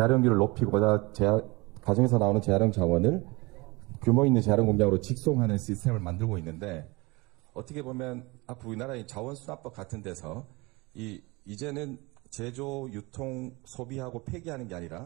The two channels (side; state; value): left; quieter; 24.5 dB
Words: 높이고자 가정에서 나오는 재활용 자원을 규모 있는 재활용 공장으로 직송하는 시스템을 만들고 있는데 어떻게 보면 앞으로 우리나라의 자원순환법 같은 데서 이제는 제조, 유통, 소비하고 폐기하는 게